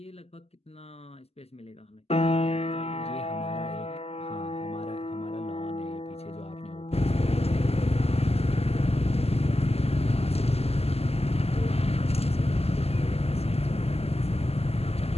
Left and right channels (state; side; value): late; right; 0.29 ms